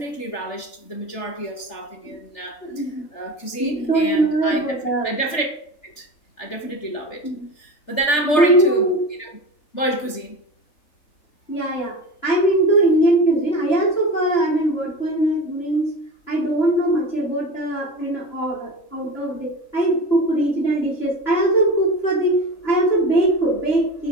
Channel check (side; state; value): right; late; 3.4 ms